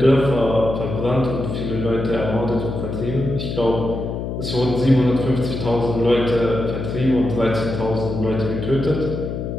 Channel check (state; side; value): noise; left; hum, 5 dB below the sound